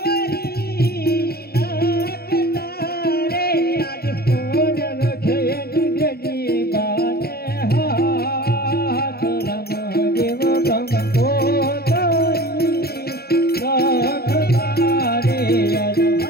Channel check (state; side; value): late; right; 0.45 ms